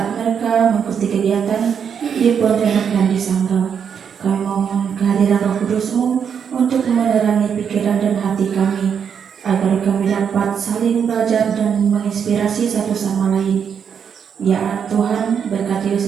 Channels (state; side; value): quieter; left; 7.4 dB